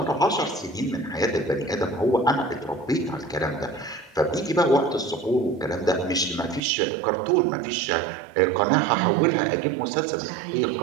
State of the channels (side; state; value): left; drops out; at 6.6 s